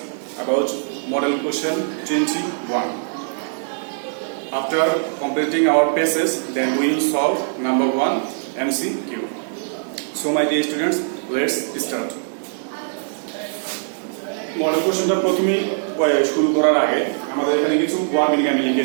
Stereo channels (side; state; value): left; silent; 64 dB below the other